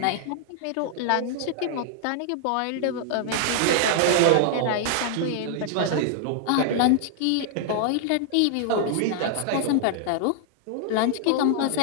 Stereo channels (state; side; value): different; both; correlation 0.00